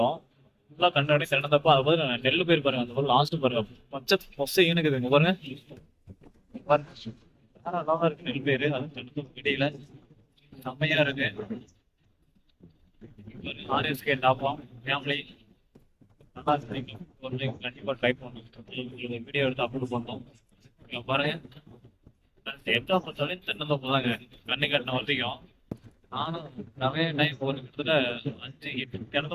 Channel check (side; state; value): both; identical; correlation 1.00